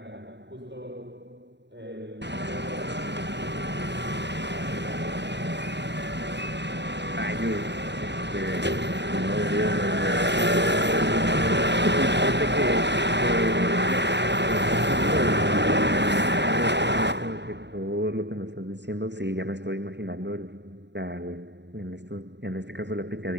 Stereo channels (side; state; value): left; late; 0.51 ms